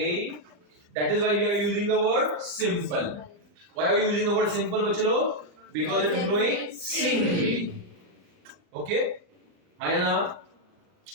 That is why we are using the word simple. Why are you using the word simple, बच्चे लोग? Because it is growing singly. Okay. Ayana.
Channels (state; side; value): late; left; 39 ms